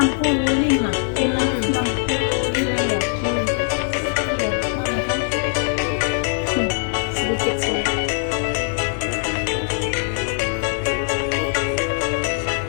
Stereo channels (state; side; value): silent; right; 58 dB below the other